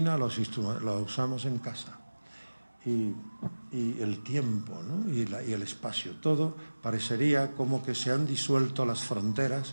los usamos en casa. Y el tiempo, ¿no? y el espacio, todo parecería como que se han disuelto las fronteras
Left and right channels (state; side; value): inverted; both; correlation -1.00